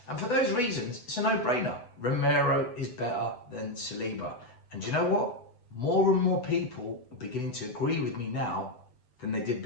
And for those reasons, it's a no-brainer. Romero is better than Saliba. And do you know what? More and more people are beginning to agree with me now than they did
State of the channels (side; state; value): right; late; 8.1 ms